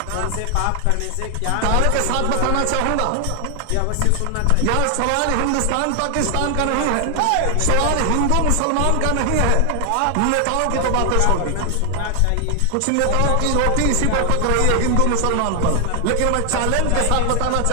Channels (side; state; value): both; different; correlation 0.00